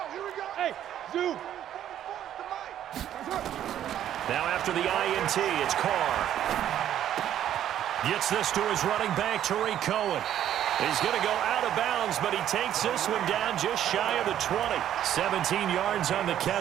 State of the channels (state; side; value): quieter; left; 11.0 dB